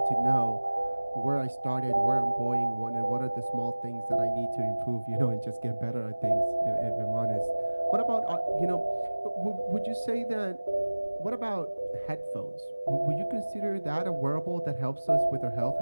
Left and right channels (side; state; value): both; inverted; correlation -1.00